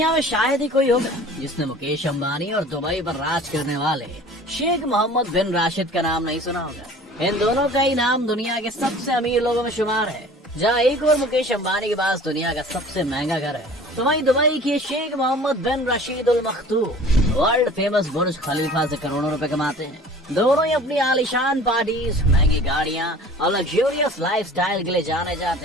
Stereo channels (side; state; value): both; normal; correlation 0.45